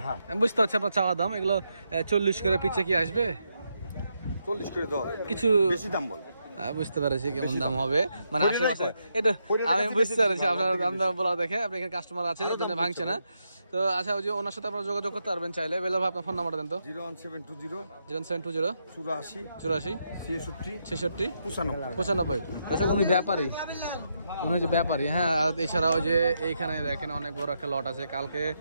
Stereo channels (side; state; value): both; inverted; correlation -0.82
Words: হ্যাঁ। আমি বুঝতে পারছি আপনার চাওয়া দাম। এগুলো 40 করে পিছে কি আসবে? 40 করে দেওয়া হবে। কিছু বেশি দাম বল। বুঝতে পারছি কেমন দাম হবে, মানে পরিণয় আশেপাশে কয়? এটা পরিণয় আমি কাছে বুঝতে বেশি পারছি দাম আপনার বলে, দাম দাম বলা দেখে। আপনি এখানে কাস্টমার আছে, আরো ওই জন্য দাম ভাঙছে না। তো আচ্ছা, ওই যে ওনার সাথে আপনারা যোগাযোগ করতে পারবেন চাইলে। বেলা ভাই আপনার ফোন নাম্বারটা দেন তো। 01720 0720 84 84 66 66 95। 95। আচ্ছা, উনি ব্যাপারী, উনি হচ্ছে ব্যাপারী। হ্যাঁ, আর এছাড়া ওই যে এইখানে দেখেন অনেক বড় একটা লট আছে। কালকে